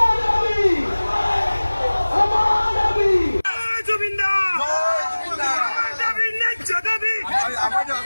দাবি আমার দাবি জুবিনদার দাবি ন্যায্য দাবি আমার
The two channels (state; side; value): inverted; both; correlation -1.00